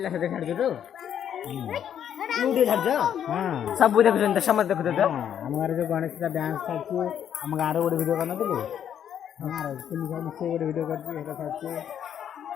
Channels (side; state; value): right; quieter; 9.3 dB